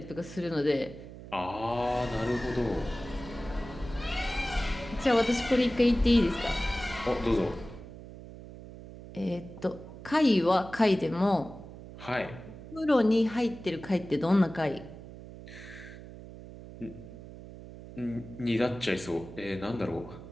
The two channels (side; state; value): right; noise; hum, 14 dB below the sound